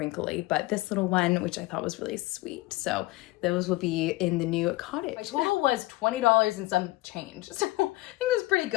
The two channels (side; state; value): right; quieter; 19.8 dB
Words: but this little one, which I thought was really sweet. So those will be in the new cottage. My total was $20 and some change. So I think it was pretty